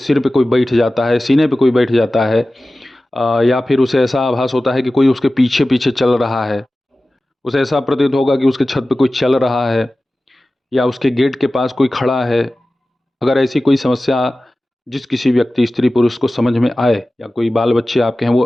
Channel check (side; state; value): both; normal; correlation 0.96